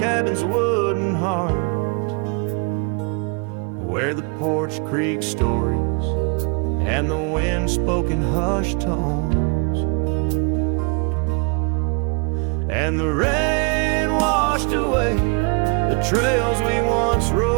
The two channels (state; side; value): quieter; left; 34.4 dB